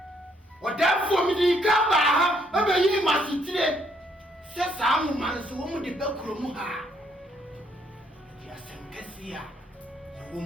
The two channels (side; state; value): both; normal; correlation 0.70